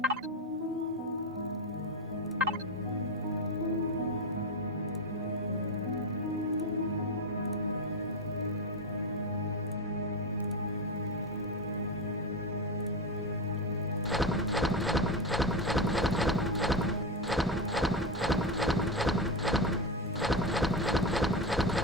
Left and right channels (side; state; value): both; normal; correlation 0.16